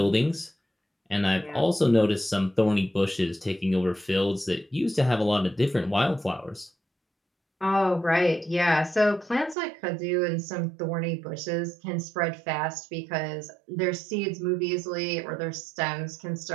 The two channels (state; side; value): drops out; left; at 9.6 s